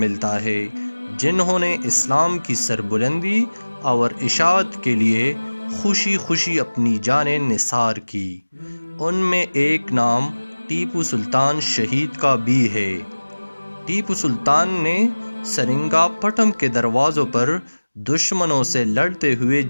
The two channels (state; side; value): inverted; both; correlation -1.00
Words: ملتا ہے جنہوں نے اسلام کی سربلندی اور اشاعت کے لیے خوشی خوشی اپنی جانیں نثار کی۔ ان میں ایک نام ٹیپو سلطان شہید کا بھی ہے۔ ٹیپو سلطان نے سرنگا پٹم کے دروازوں پر دشمنوں سے لڑتے ہوئے